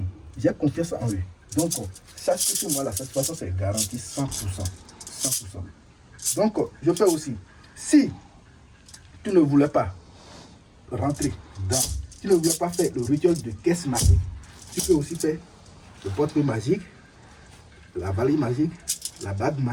J'ai confiance en eux. Donc, sache que moi, la satisfaction, c'est garanti 100%. Donc, je fais aussi. Si tu ne voulais pas rentrer dans, tu ne voulais pas faire le rituel de caisse magique, tu peux aussi faire le portefeuille magique, la valise magique, la bague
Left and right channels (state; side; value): identical; both; correlation 1.00